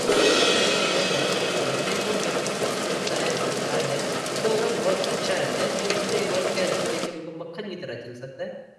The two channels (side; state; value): both; identical; correlation 1.00